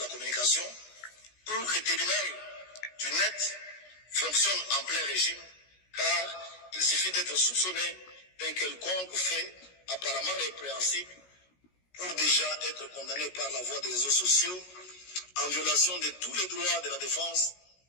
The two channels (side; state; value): right; late; 16 ms